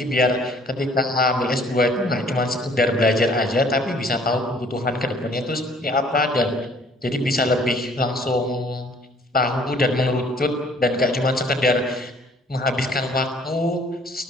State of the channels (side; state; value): both; normal; correlation 0.58